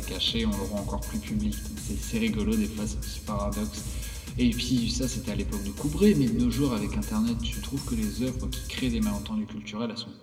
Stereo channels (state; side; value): identical; both; correlation 1.00